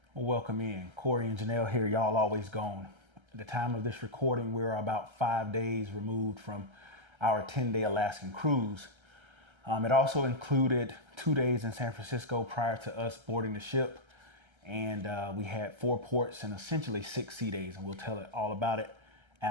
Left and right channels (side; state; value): left; late; 1.3 ms